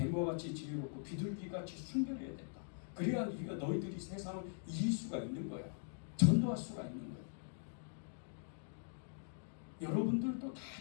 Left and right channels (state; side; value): silent; right; digital silence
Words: 같이 지혜롭고 비둘기같이 순결해야 된다. 그래야 너희들이 세상을 이길 수가 있는 거야. 전도할 수가 있는 거야. 여러분들도 다